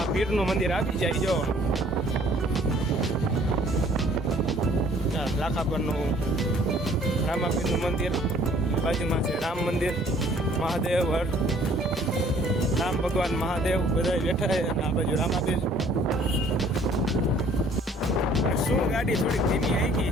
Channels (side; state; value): both; normal; correlation 0.58